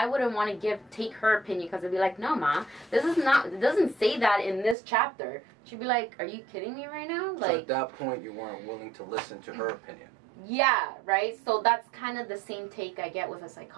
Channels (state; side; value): drops out; left; at 4.8 s